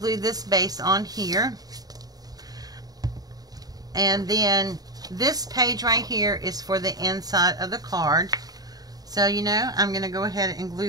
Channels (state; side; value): late; left; 0.18 ms